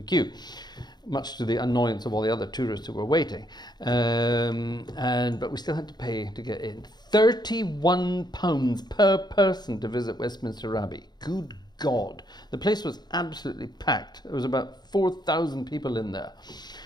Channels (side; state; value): right; late; 0.20 ms